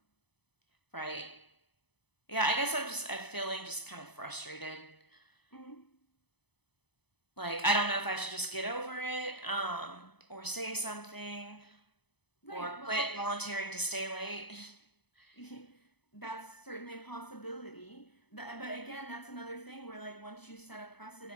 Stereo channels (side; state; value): right; late; 0.99 ms